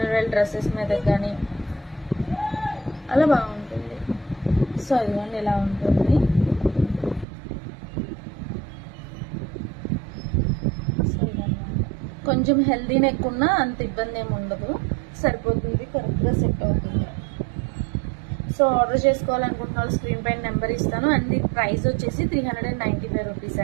డ్రెస్సెస్ మీద కానీ అలా బాగుంటుంది. సో ఇదిగోండి ఇలా ఉంటుంది. సో ఇదన్నమాట, కొంచెం హెల్దీ నెక్ ఉన్నా అంత ఇబ్బంది ఏమి ఉండదు, సరిపోతుంది, కరెక్ట్గా సెట్ అవుతుంది. సో ఆర్డర్ చేసుకోవాలనుకుంటున్న వాళ్ళు స్క్రీన్ పైన నెంబర్ ఇస్తాను. అండ్ ఇది ప్రైస్ వచ్చేసి 395 రూపీస్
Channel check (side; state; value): left; drops out; at 7.2 s